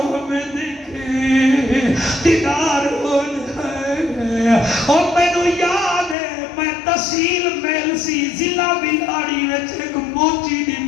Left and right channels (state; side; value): drops out; right; at 6.2 s